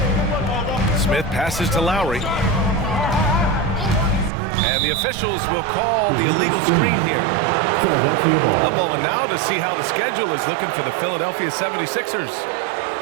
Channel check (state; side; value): drops out; left; at 4.3 s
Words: Smith passes to Lowry. And the officials will call the illegal screen here. A moment now to see how the schedule is looking for the Philadelphia 76ers.